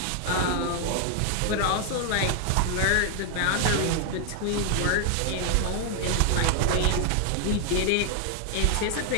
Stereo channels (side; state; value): both; different; correlation 0.00